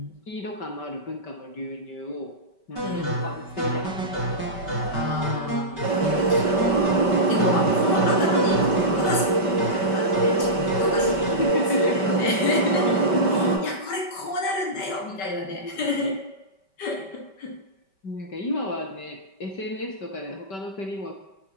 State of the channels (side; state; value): right; late; 5.2 ms